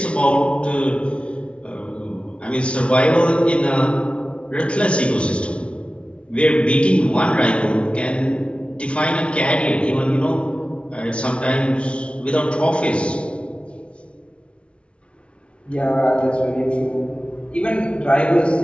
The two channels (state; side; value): late; right; 0.059 ms